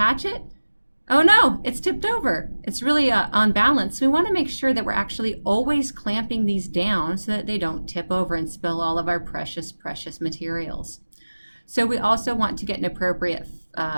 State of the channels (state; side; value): inverted; both; correlation -1.00